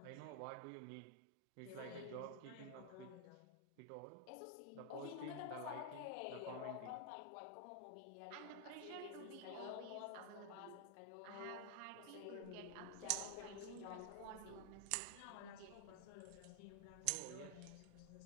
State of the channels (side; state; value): both; different; correlation 0.00